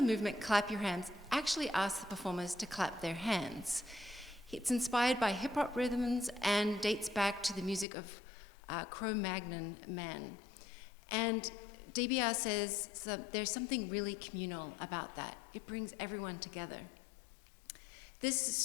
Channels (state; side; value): drops out; right; at 7.9 s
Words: Clap Your Hands, actually asks the performers to clap their hands. It's inspired by hip-hop rhythms and dates back to the music of Cro-Magnon Man. And DBR says there's something really communal about that. It brings everyone together. This